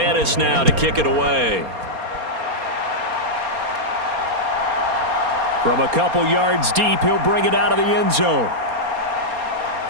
now to kick it away. From a couple yards deep, he'll bring it out of the end zone.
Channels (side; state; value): left; late; 4.3 ms